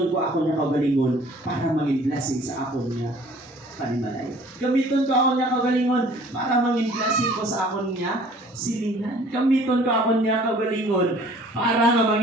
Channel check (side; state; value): both; normal; correlation 0.53